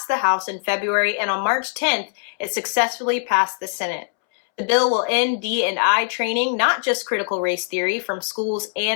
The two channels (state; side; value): silent; right; 64 dB below the other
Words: the House in February, and on March 10th, it successfully passed the Senate. The bill will end D&I training, not just critical race theory, from schools